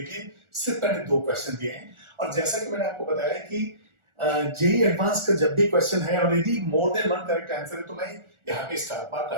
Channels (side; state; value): left; late; 1.4 ms